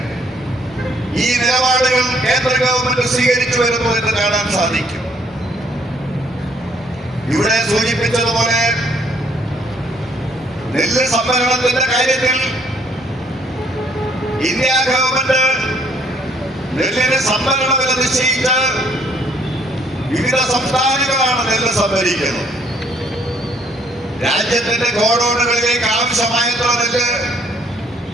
ഈ നിലപാടുകൾ കേന്ദ്ര ഗവൺമെന്റ് സ്വീകരിച്ചു വരുന്നു എന്ന് കാണാൻ സാധിക്കും. ഇവിടെ സൂചിപ്പിച്ചതുപോലെ നെല്ല് സംഭരണത്തിന്റെ കാര്യത്തിൽ ഇന്ത്യ ഗവൺമെന്റ് നെല്ലിന് സംഭരണ വില നിശ്ചയിച്ച് വിവിധ സംസ്ഥാനങ്ങളാണ് നെല്ല് സംഭരിക്കുന്നത്. രാജ്യത്തിന്റെ ഗോഡൌണുകളിലേക്ക് ആവശ്യമായത്ര നെല്ല്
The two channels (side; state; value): both; normal; correlation 0.64